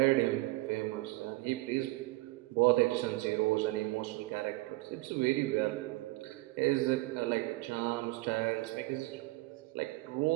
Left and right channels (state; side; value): quieter; left; 21.1 dB